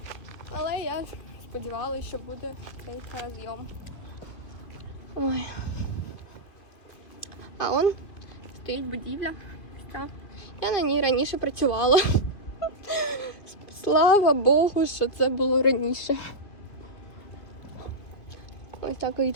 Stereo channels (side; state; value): right; late; 2.5 ms